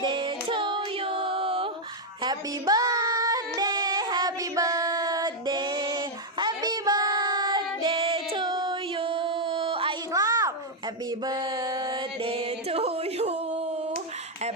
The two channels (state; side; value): normal; both; correlation 0.00